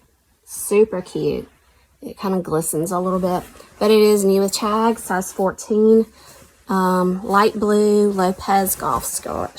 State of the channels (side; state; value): both; identical; correlation 1.00